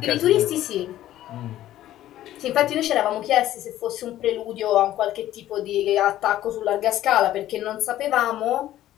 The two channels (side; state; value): right; quieter; 13.5 dB